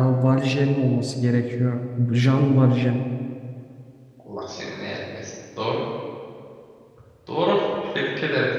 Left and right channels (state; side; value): identical; both; correlation 1.00